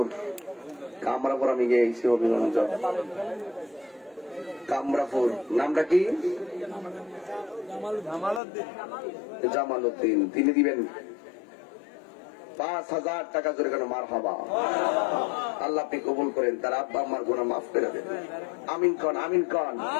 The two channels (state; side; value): drops out; right; at 8.4 s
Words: কামরাপুর আমি গিয়েছি অভিগঞ্জ। কামরাপুর। নামটা কি? জামাল উদ্দিন। তিনি দিবেন 5,000 টাকা জোরে কেন? মারহাবা। আল্লাহ আপনি কবুল করেন, তার আব্বা আমার গুনাহ মাফ করে দেন। আমিন কন, আমিন কন।